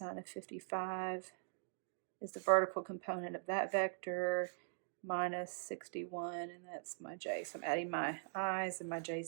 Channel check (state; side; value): silent; left; digital silence